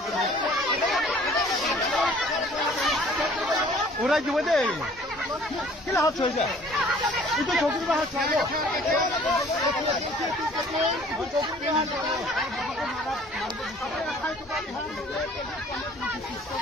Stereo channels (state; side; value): normal; both; correlation 0.53